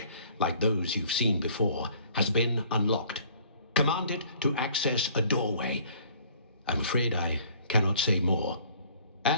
like those you've seen before, has been unlocked. Command it to access a doorway. I'm afraid I cannot say more.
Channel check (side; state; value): both; inverted; correlation -0.55